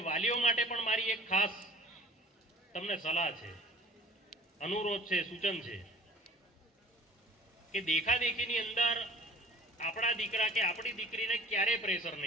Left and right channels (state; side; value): normal; both; correlation 0.44